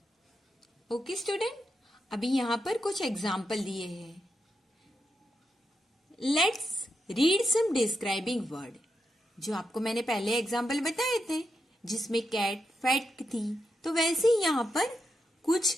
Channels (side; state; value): both; normal; correlation 0.85